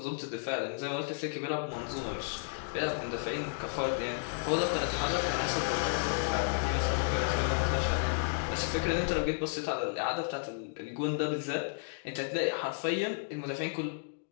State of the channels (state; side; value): silent; right; digital silence